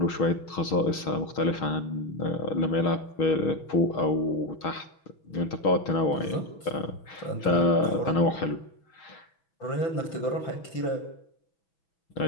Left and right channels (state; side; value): late; right; 6.4 ms